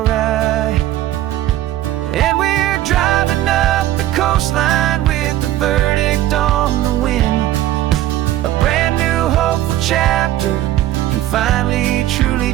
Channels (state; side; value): quieter; left; 13.9 dB